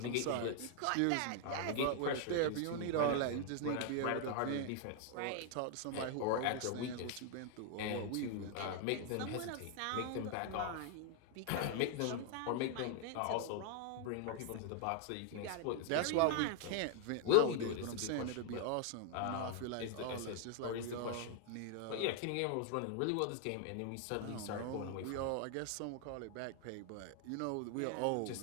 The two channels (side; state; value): both; different; correlation 0.00